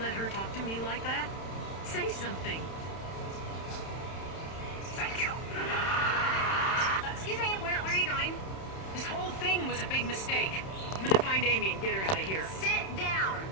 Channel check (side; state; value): right; late; 31 ms